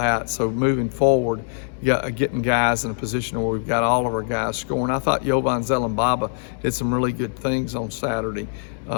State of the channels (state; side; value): silent; right; digital silence